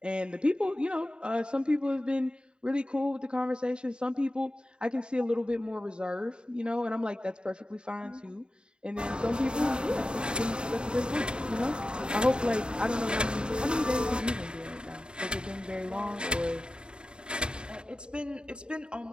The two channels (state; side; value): late; left; 0.051 ms